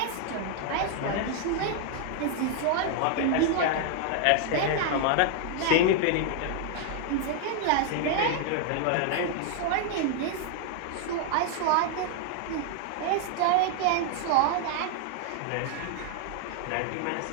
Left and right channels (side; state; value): both; different; correlation 0.00